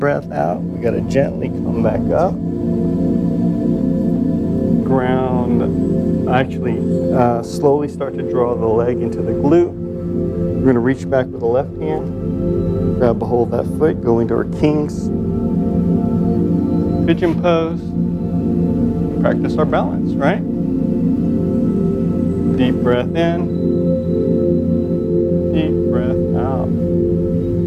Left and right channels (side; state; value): both; identical; correlation 1.00